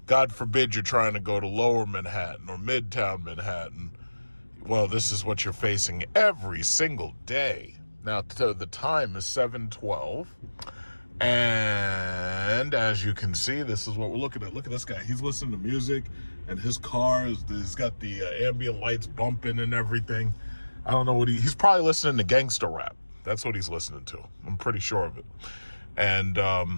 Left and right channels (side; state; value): both; inverted; correlation -1.00